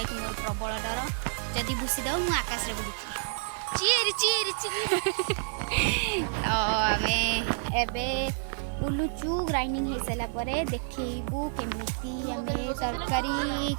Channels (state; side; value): silent; left; 58 dB below the other